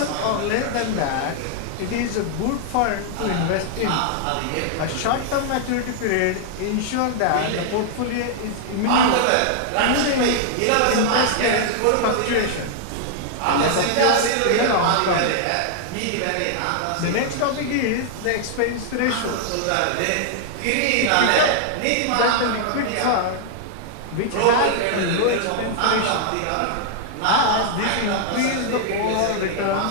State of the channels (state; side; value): different; both; correlation -0.01